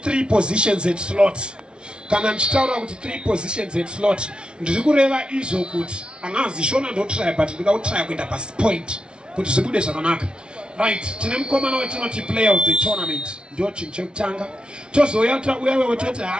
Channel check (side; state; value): left; late; 0.057 ms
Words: positions at slot. Kana ndichitaura kuti 3 positions at slot. Ndiri kureva izvo kuti angazi shona ndotry but ndingautry kuenda pasi point kuti zvibude zvakanaka. Right, tine mukomana wetinoti player of the tournament. Ndio chinhu chekutanga. Tozoya uyawe toti